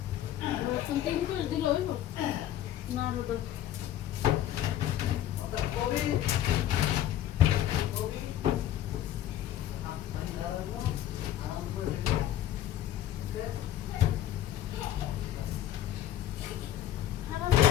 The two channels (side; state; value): right; quieter; 12.2 dB